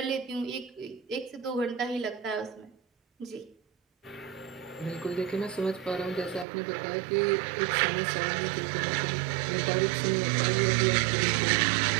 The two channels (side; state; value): left; drops out; at 6.5 s